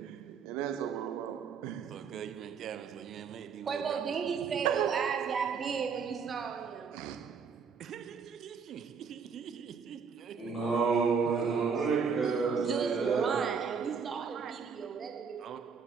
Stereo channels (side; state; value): left; quieter; 6.0 dB